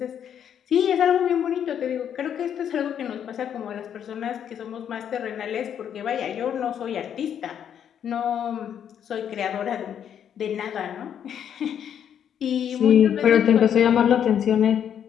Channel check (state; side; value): quieter; right; 9.0 dB